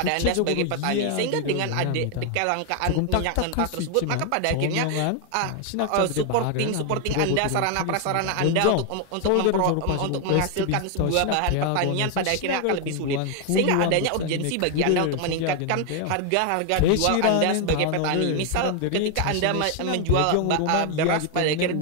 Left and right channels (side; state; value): both; different; correlation 0.00